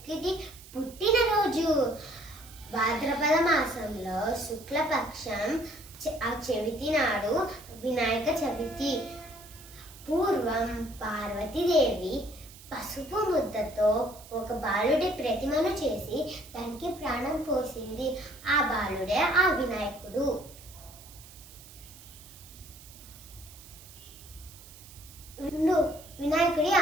పుట్టినరోజు. భాద్రపద మాసంలో శుక్లపక్షం ఆ చవితి నాడు వినాయక చవితి. పూర్వం పార్వతీదేవి పసుపు ముద్దతో ఒక బాలుడి ప్రతిమను చేసి దానికి ప్రాణం పోసింది. ఆ బాలుడే ఆ వినాయకుడు. వినాయకుడి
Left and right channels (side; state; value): right; noise; hiss, 19 dB below the sound